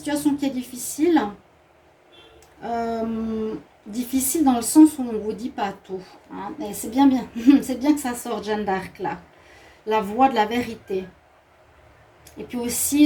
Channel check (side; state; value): both; identical; correlation 1.00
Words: qui est difficile, difficile dans le sens où on ne vous dit pas tout. Hein, et c'est bien, c'est bien que ça sorte, Jeanne d'Arc là, la voix de la vérité. Et puis